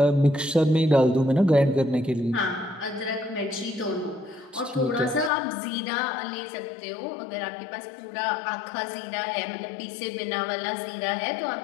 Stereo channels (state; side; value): drops out; right; at 5.3 s